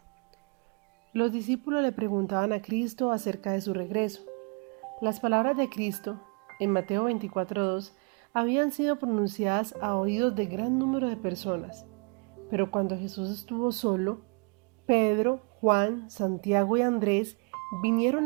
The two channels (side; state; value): left; quieter; 35.9 dB